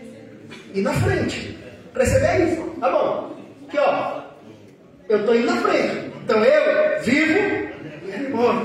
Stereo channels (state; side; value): identical; both; correlation 1.00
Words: Ir na frente. Preceder é isso. Tá bom. Aqui, ó. Eu estou indo na frente. Então eu vivo e ele